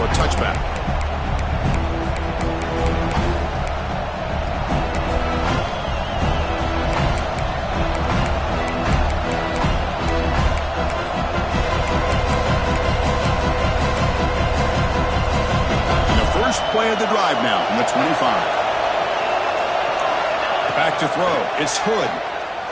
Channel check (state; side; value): identical; both; correlation 1.00